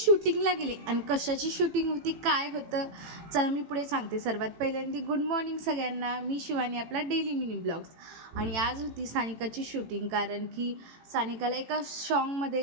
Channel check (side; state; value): left; late; 18 ms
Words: गेले आणि कशाची शूटिंग होती काय होतं चला मी पुढे सांगते. सर्वात पहिल्यांदा गुड मॉर्निंग सगळ्यांना. मी शिवानी, आपला डेली मिनी ब्लॉग्स. आणि आज होती सानिकाची शूटिंग, कारण की सानिकाला एका